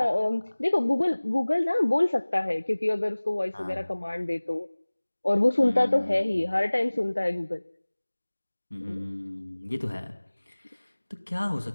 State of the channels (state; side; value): inverted; both; correlation -1.00